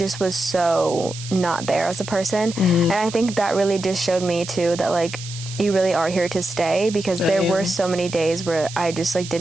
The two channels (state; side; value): noise; right; hiss, 12 dB below the sound